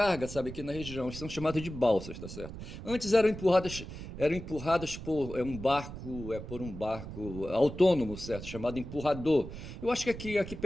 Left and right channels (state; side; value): noise; right; rumble, 10 dB below the sound